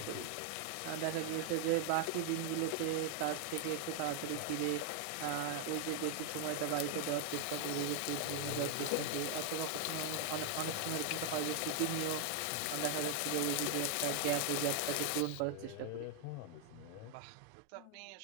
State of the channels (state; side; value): different; both; correlation 0.00